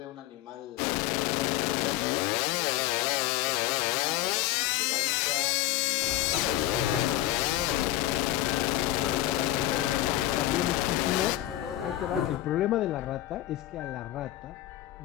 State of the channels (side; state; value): right; quieter; 15.0 dB